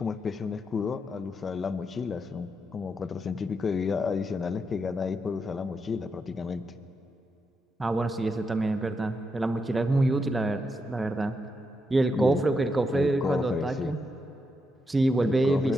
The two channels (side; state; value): both; normal; correlation 0.83